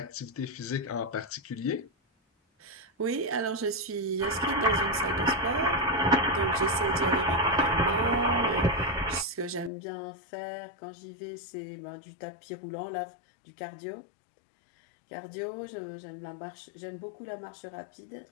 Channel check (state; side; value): drops out; right; at 9.7 s